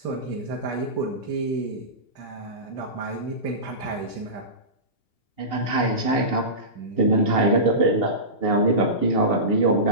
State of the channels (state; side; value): late; right; 2.8 ms